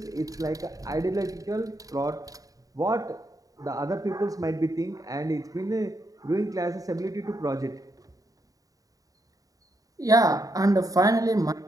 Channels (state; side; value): late; left; 0.17 ms